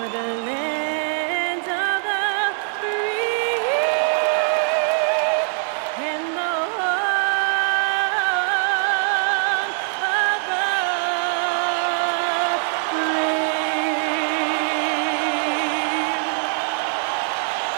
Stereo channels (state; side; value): silent; left; digital silence